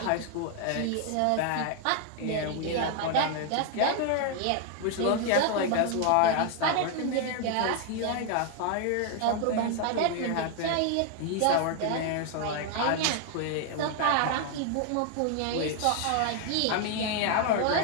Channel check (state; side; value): different; both; correlation 0.00